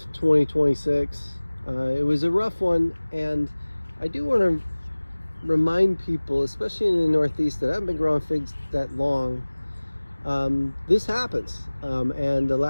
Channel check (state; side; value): inverted; both; correlation -1.00